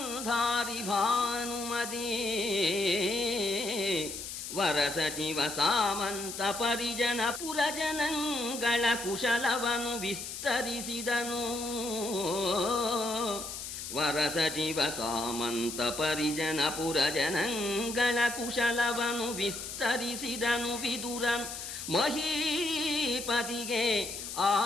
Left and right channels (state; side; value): noise; left; hiss, 8 dB below the sound